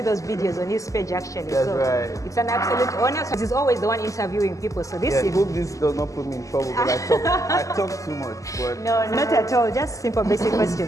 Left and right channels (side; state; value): right; late; 0.16 ms